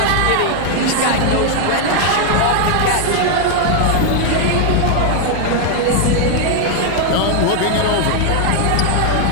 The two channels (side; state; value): both; different; correlation 0.00